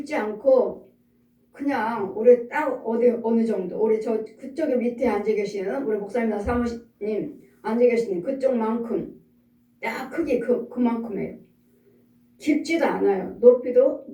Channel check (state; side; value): identical; both; correlation 1.00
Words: 않고 그냥 우리 딱 어느 정도 우리 저 그쪽에 밑에 앉아 계시는 우리 목사님이나 사모님 앉아 계시는 그쪽만큼 딱 크기 그만큼이에요. 깊지도 않아요. 높이도